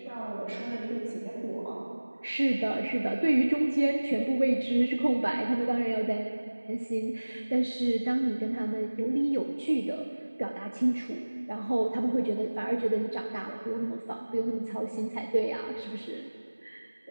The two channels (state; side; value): inverted; both; correlation -1.00